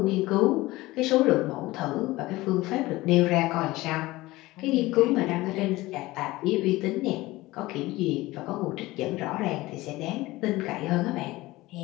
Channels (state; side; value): quieter; right; 19.1 dB